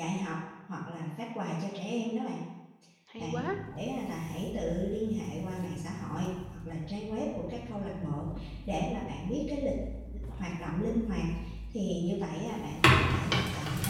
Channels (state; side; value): identical; both; correlation 1.00